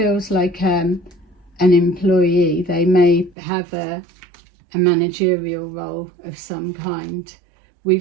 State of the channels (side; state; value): left; drops out; at 3.4 s